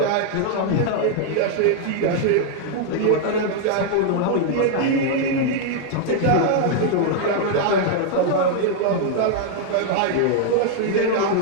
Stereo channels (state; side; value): different; both; correlation 0.00